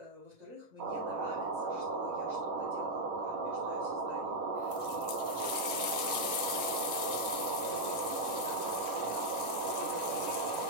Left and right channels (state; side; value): late; left; 10 ms